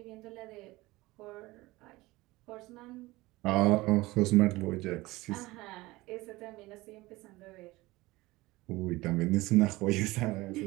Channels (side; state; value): left; quieter; 20.1 dB